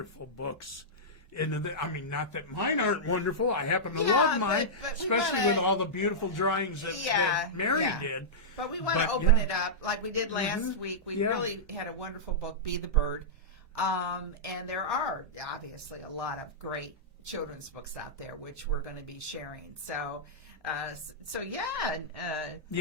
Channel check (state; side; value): normal; both; correlation -0.12